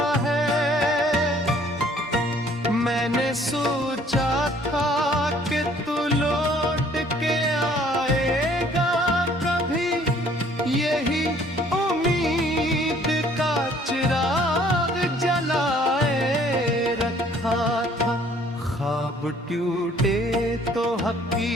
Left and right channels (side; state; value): both; normal; correlation 0.58